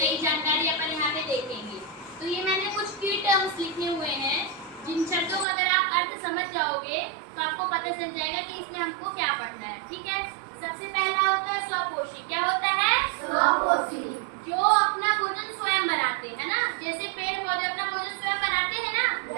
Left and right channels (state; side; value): drops out; left; at 5.5 s